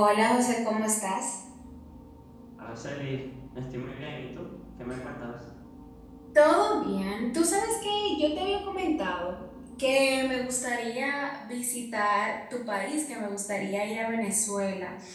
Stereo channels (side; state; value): both; identical; correlation 1.00